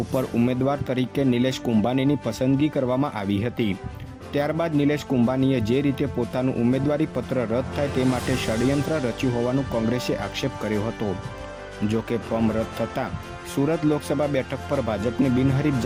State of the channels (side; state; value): both; identical; correlation 1.00